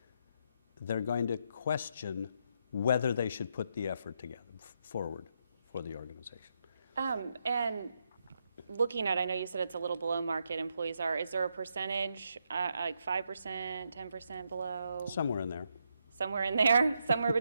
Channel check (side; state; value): both; inverted; correlation -0.80